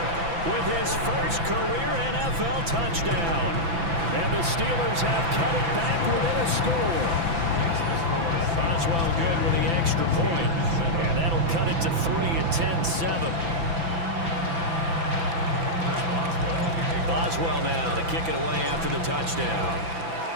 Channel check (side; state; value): left; late; 6.0 ms